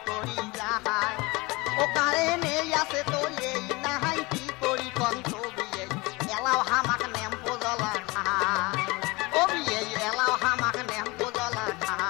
করি যাহাই ও কারেন্ট আছে তো এই নাহাই কি করি কন্ত বিয়ে এলাও হামাক নেম্পো জ্বলা খায় ও বিয়ে এলাও হামাক নেম্পো জ্বলা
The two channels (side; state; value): right; quieter; 24.4 dB